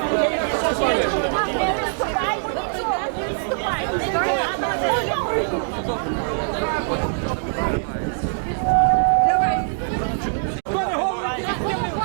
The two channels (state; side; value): silent; left; digital silence